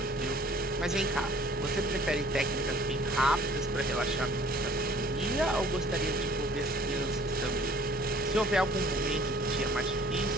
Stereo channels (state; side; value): normal; both; correlation 0.54